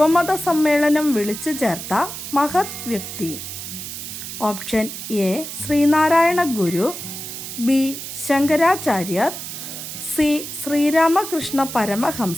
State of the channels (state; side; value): noise; right; hiss, 8 dB below the sound